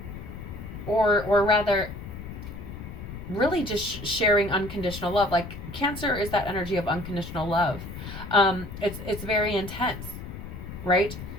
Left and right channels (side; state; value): left; noise; rumble, 10 dB below the sound